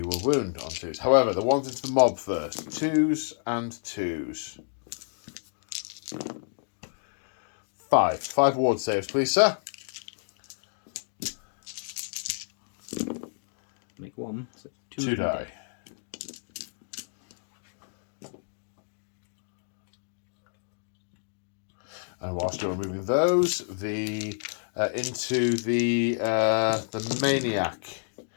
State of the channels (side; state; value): right; silent; digital silence